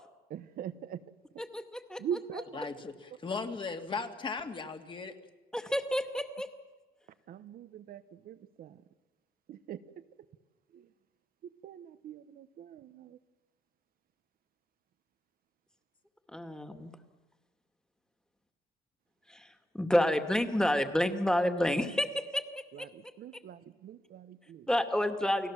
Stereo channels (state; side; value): normal; both; correlation 0.85